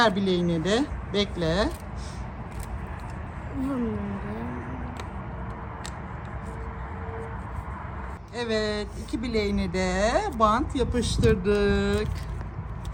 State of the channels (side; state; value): both; identical; correlation 1.00